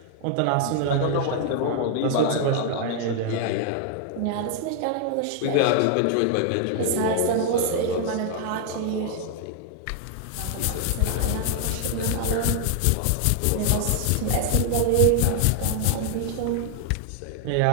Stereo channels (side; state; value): both; different; correlation 0.00